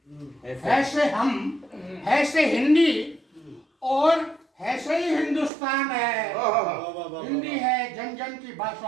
है से हम, है से हिंदी और है से ही हिंदुस्तान है। हिंदी है जन जन की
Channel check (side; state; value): left; drops out; at 5.5 s